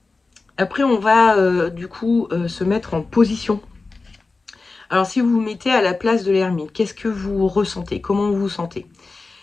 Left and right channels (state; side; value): quieter; right; 3.8 dB